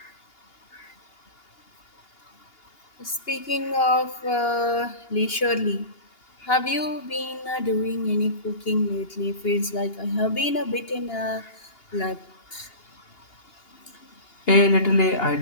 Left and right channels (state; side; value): late; right; 2.8 ms